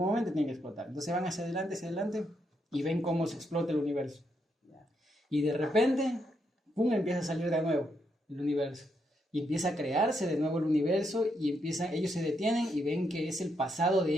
momento tiene que explotar. Entonces van hacia adelante y ven cómo se explota el universo. Y de repente ¡pum!, empieza a salir de nuevo el universo. Y empieza a crearse de nuevo el universo y ellos se detienen y ven que es el pasado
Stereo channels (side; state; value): both; normal; correlation 0.79